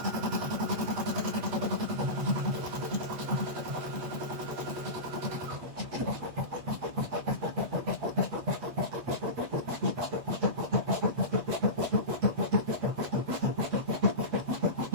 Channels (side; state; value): left; late; 8.6 ms